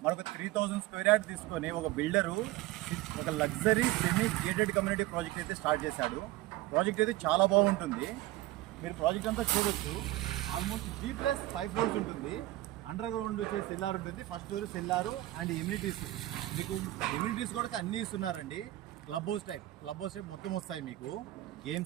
మనకు 3000 స్క్వేర్ యార్డ్ తీసుకొని ఒక బిల్డరు ఒక luxury semi gated community project అయితే స్టార్ట్ చేశాడు. ప్రాజెక్ట్ అయితే చాలా బాగుంటుంది. మీరు ప్రాజెక్ట్ అంతా చూడొచ్చు. ఆల్మోస్ట్ G+5 ఫ్లోర్స్ ఉంటుంది. అండర్ గ్రౌండ్ వచ్చేసి సెల్లార్ ఉంటుంది. First floor cellar and immunities. మీకు ఇమ్యూనిటీస్ కూడా అన్నీ ఇస్తున్నారండి. క్లబ్ హౌస్ టైప్ మొత్తం వస్తాయి మీకు.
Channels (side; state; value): left; quieter; 16.7 dB